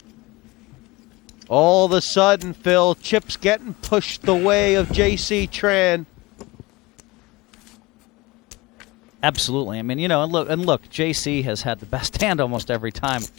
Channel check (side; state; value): right; quieter; 22.3 dB